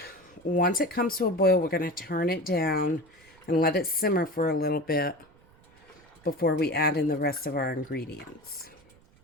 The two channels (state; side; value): noise; right; rumble, 28 dB below the sound